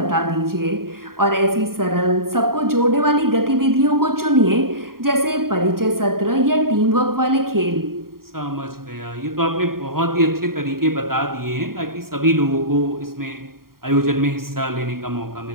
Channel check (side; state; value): left; late; 0.92 ms